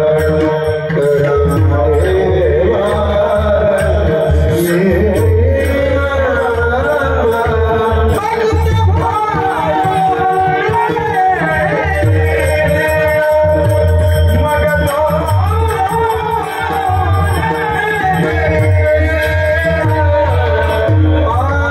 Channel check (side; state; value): both; identical; correlation 1.00